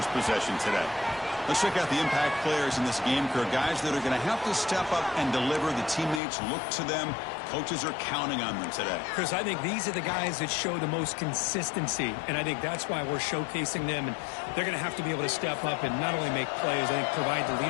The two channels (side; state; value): right; drops out; at 6.2 s